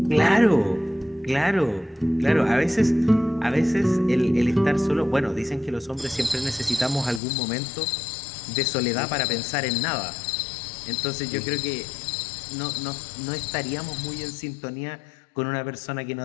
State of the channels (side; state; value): right; drops out; at 7.2 s